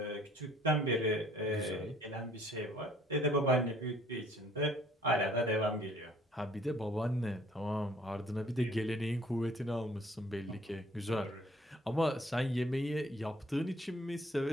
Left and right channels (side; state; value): both; normal; correlation 0.58